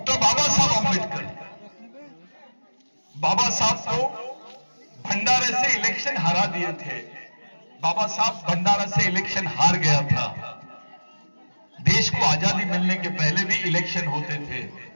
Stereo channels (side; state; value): both; inverted; correlation -1.00